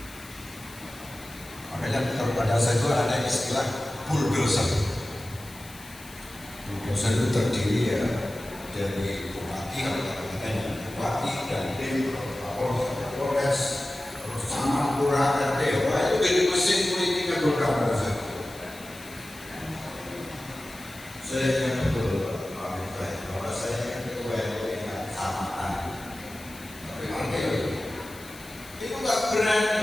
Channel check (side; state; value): left; noise; hiss, 19 dB below the sound